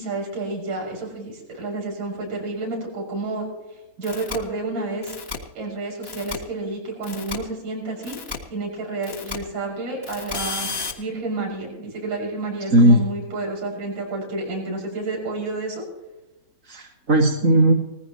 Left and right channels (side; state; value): left; late; 2.9 ms